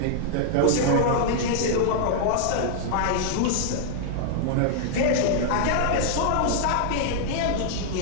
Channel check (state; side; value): different; both; correlation -0.01